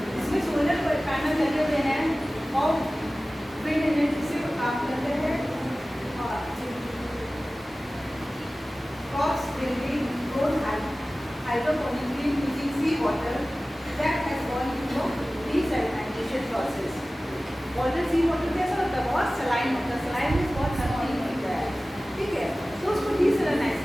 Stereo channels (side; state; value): both; normal; correlation 0.97